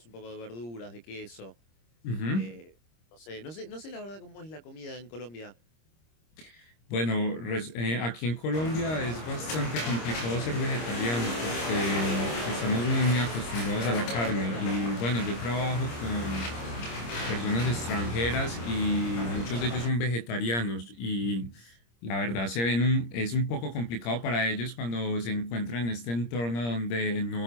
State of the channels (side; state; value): right; late; 26 ms